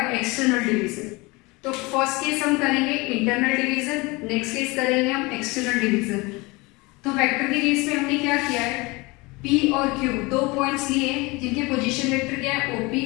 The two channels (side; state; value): right; quieter; 24.7 dB